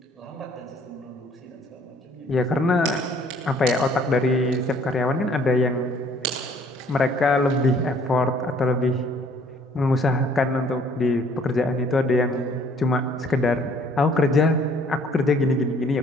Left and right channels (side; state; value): both; normal; correlation 0.58